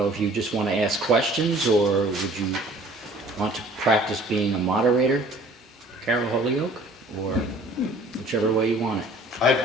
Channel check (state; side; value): normal; both; correlation 0.52